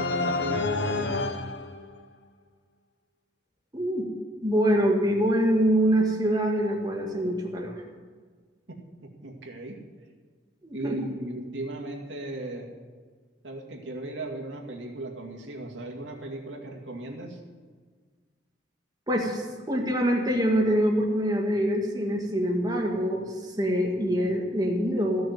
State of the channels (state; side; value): normal; both; correlation 0.63